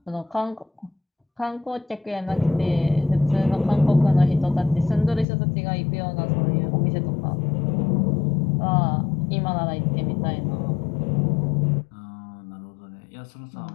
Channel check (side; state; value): right; drops out; at 5.2 s